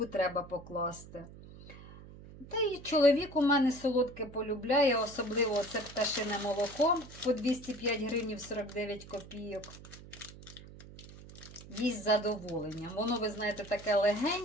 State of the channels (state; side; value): noise; right; hum, 17 dB below the sound